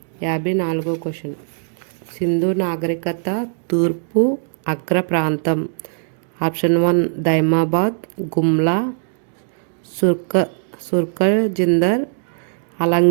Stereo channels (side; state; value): left; silent; digital silence